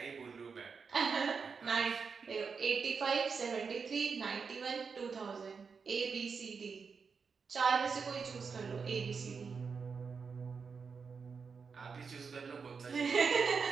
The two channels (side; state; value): left; quieter; 5.5 dB